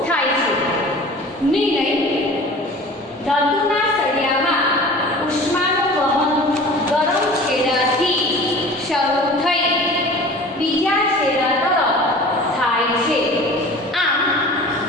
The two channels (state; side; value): normal; both; correlation 0.41